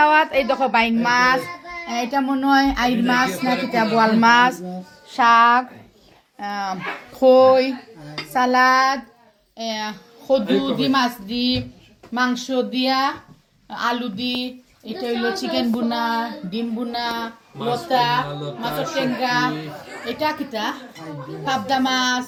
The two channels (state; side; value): identical; both; correlation 1.00